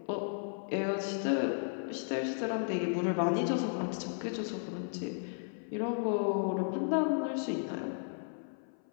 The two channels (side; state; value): right; silent; 55 dB below the other